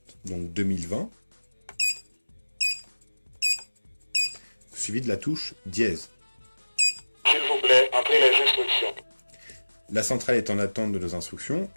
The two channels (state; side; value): inverted; both; correlation -1.00